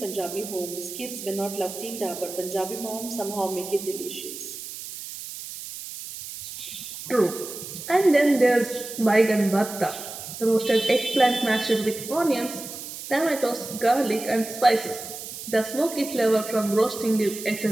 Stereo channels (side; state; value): right; noise; hiss, 10 dB below the sound